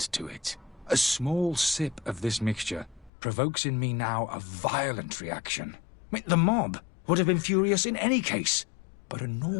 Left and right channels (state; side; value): drops out; right; at 3.1 s